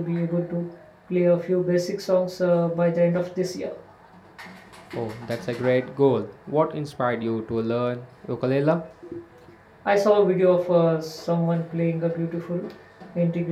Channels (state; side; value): identical; both; correlation 1.00